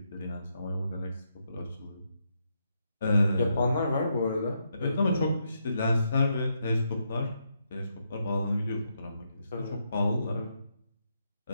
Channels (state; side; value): inverted; both; correlation -0.80